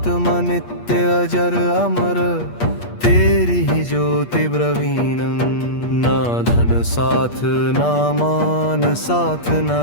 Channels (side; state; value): right; late; 8.4 ms